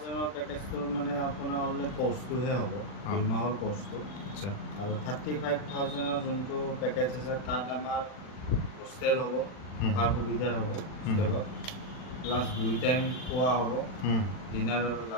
এর প্যাকেজটো মানে আপোনাৰ অনলি কোৰ্সটোহে হ'ব 2 মাহৰ কোৰ্সটো আচ্ছা আৰু 35,000 এৰ যোনটো পেকেজ আছে তাত আমাৰ হোস্টেল হ'ব থকাৰ সুবিধা হ'ব হোস্টেলত প্লাস 2 টাইম খোৱা হ'ব ডিনাৰ আৰু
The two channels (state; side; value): late; right; 40 ms